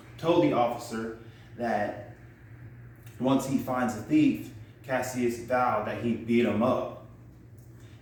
told the officer that once he finds the thief, Cassius vowed that he'd beat him up.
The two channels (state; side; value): identical; both; correlation 1.00